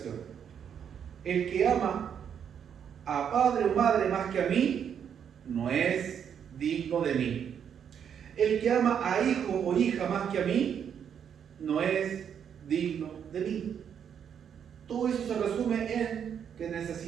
El que ama a padre o madre más que a mí, no es digno de mí. El que ama a hijo o hija más que a mí, no es digno de mí. Todo eso se resume en que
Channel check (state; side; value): quieter; left; 8.2 dB